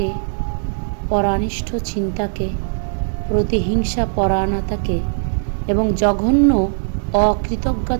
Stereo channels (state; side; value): silent; left; 60 dB below the other